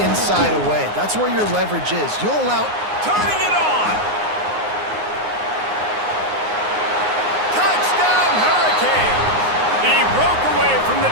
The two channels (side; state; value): left; late; 9.6 ms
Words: inside away. That's where your leverage is. You'll allow... Turning it on! Touchdown, Hurricanes! He broke away from the